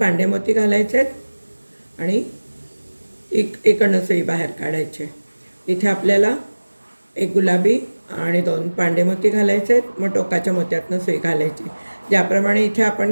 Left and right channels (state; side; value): inverted; both; correlation -1.00